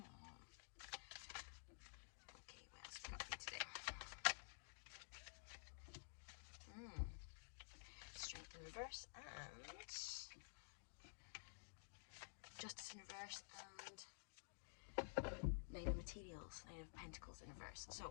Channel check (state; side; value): silent; right; digital silence